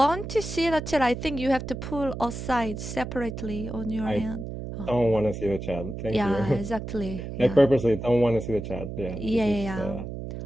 to see the chat, I think you have to pull aside separately on your I hand. Oh, don't want to see the chat. Thank yeah, you. exactly. I Yeah. purposely don't want to see the chat. Yeah, Yeah, this is yeah,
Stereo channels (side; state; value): right; noise; hum, 8 dB below the sound